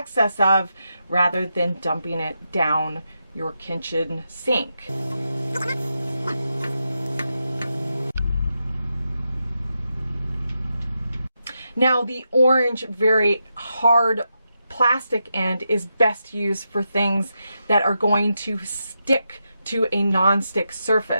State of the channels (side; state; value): both; inverted; correlation -0.86